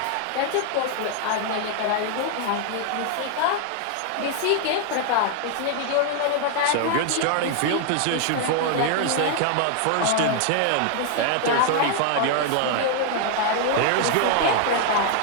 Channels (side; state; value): both; different; correlation 0.00